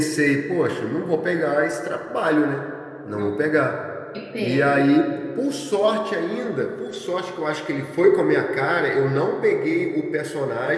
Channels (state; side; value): identical; both; correlation 1.00